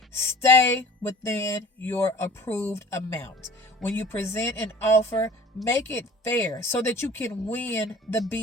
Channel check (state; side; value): normal; both; correlation 0.46